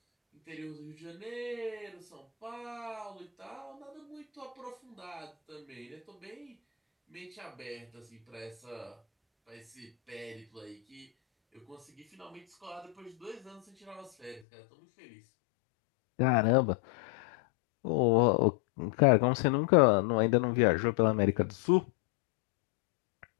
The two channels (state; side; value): drops out; right; at 14.4 s